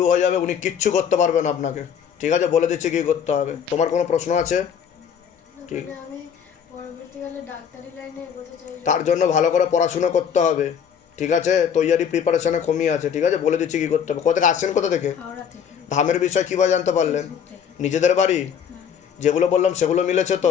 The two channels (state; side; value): quieter; right; 7.8 dB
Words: হয়ে যাবে, উনি কিচ্ছু করতে পারবেন আপনাকে। ঠিক আছে, বলে দিচ্ছি কি করতে হবে। তোমার কোনো প্রশ্ন আছে? ঠিক, আমি পরবর্তীকালে ডাক্তারি লাইনে এগোতে চাই। তার জন্য ভালো করে পড়াশুনো করতে হবে। ঠিক আছে, তৈয়ারি প্রিপারেশনে কমই আছে। ঠিক আছে, বলে দিচ্ছি কি করতে হবে। কোথা থেকে আসছেন, কোথা থেকে? হাওড়া থেকে। ধামের বিষয় কীভাবে জানতে পারলেন? ফেসবুক থেকে। নিজেদের বাড়ি যেগুলো বললাম সেগুলো মিলেছে